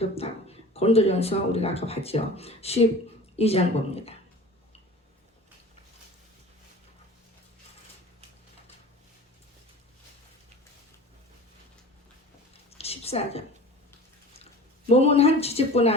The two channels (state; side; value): normal; both; correlation 0.39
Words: 고린도전서 우리가 아까 봤죠. 12장 봅니다. 14절. 몸은 한 지체뿐